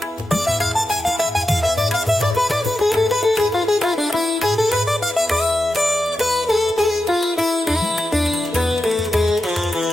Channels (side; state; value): both; normal; correlation 0.89